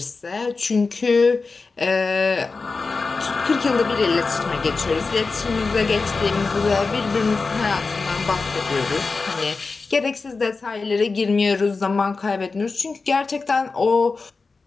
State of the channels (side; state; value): right; quieter; 4.1 dB